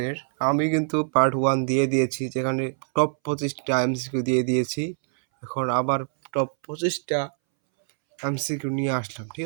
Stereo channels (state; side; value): silent; left; 62 dB below the other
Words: আমি কিন্তু পার্ট 1 দিয়ে দিয়েছি, যেখানে টপ 25টা এমসিকিউ দিয়ে দিয়েছি। এখন আবার টপ 25টা এমসিকিউ নিয়ে আসলাম, ঠিক